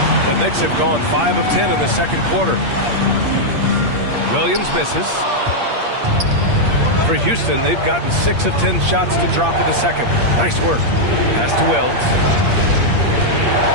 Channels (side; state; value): left; late; 8.6 ms